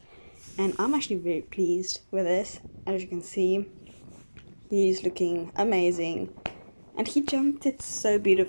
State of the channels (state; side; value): inverted; both; correlation -1.00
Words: And I'm actually very pleased with this. As you can see, he's looking amazing and he jumped it so